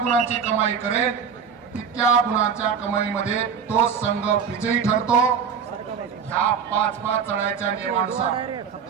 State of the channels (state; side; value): quieter; left; 6.8 dB